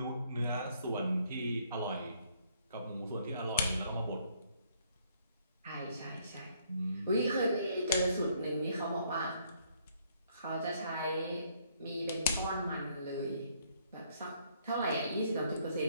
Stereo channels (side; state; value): both; inverted; correlation -0.67